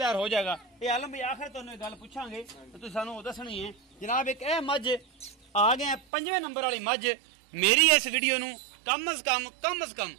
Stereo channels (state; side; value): drops out; left; at 6.0 s